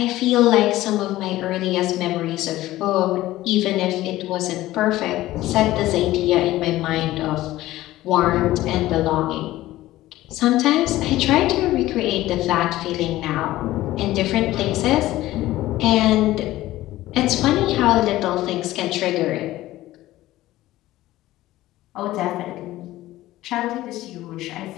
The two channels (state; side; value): quieter; right; 16.0 dB